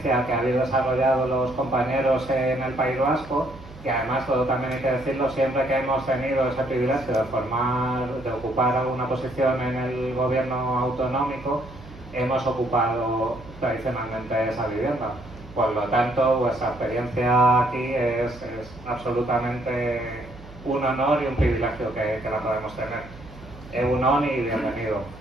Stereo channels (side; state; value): right; noise; hum, 18 dB below the sound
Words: que habéis desarrollado los compañeros en el País Vasco, y además, todo también hay que decirlo, siempre que hemos tenido ese privilegio de ocupar una posición en el gobierno autonómico, hemos ocupado tradicionalmente esa vivienda. Por lo tanto, vuestra experiencia aquí es absolutamente un honor y un privilegio que la podemos tener. Egunon y bienvenido.